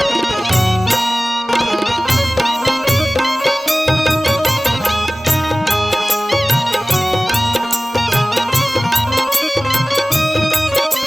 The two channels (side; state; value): both; normal; correlation 0.97